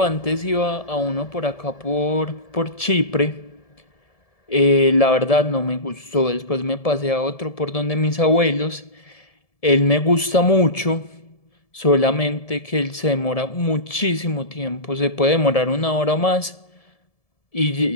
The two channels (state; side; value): late; right; 1.7 ms